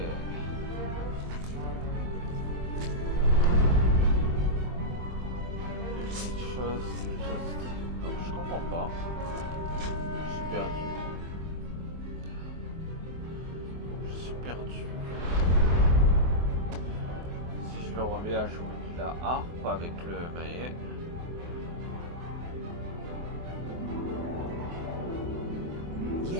Une chose juste. Donc je comprends pas. Je suis perdu. Je suis perdu. Si je le remets à jouer la harpe avec le maillet.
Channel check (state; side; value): late; left; 23 ms